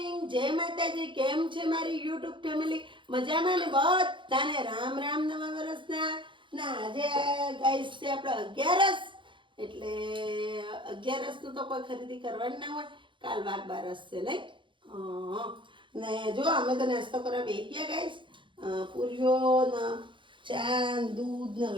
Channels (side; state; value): left; late; 0.24 ms